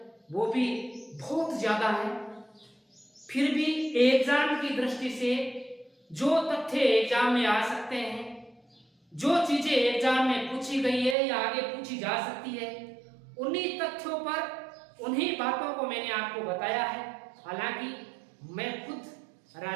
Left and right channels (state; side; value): drops out; left; at 11.2 s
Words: वो भी बहुत ज्यादा है, फिर भी एग्जाम की दृष्टि से जो तथ्य एग्जाम में आ सकते हैं, जो चीजें एग्जाम में पूछी गई है या आगे पूछी जा सकती है, उन्हीं तथ्यों पर, उन्हीं बातों को मैंने आपको बताया है। हालांकि मैं खुद